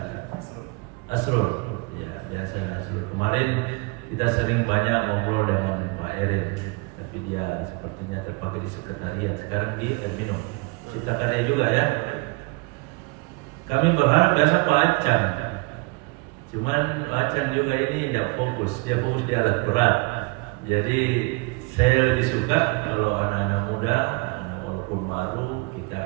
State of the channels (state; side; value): quieter; left; 26.7 dB